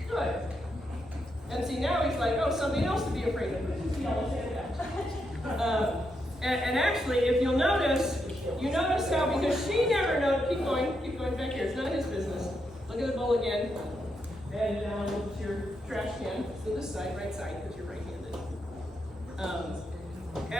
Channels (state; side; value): normal; both; correlation 0.82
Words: Good. And see now he's like, oh, something else to be afraid of. Which is the yellow sandbag. And actually, if you'll notice, you notice how because she never knows. Keep going back here. It's none of his business. Look at the bowl again. And down to your trash can. So this side, right side, because you're right-handed.